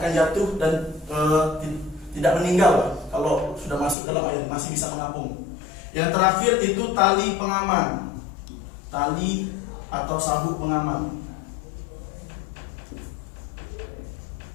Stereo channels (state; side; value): drops out; right; at 4.0 s